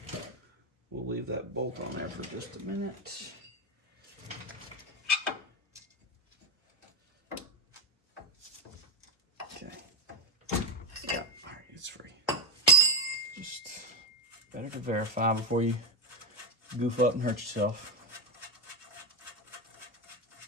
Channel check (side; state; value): both; normal; correlation 0.08